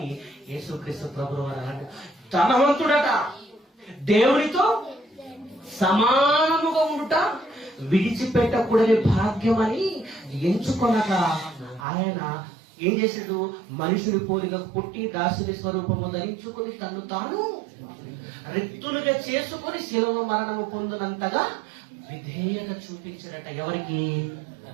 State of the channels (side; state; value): left; drops out; at 11.9 s